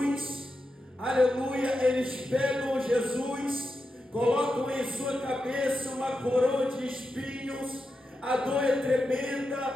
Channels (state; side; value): normal; both; correlation 0.88